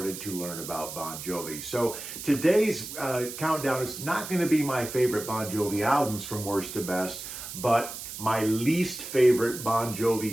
to learn about Bon Jovi. So today's countdown is not going to be my favorite Bon Jovi albums from worst to best, but my least favorite Bon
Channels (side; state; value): right; noise; hiss, 9 dB below the sound